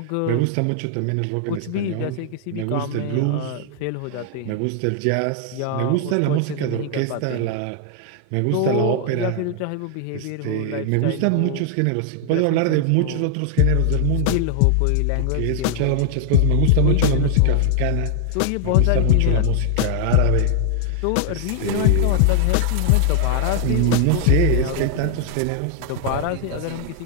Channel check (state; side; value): different; both; correlation 0.00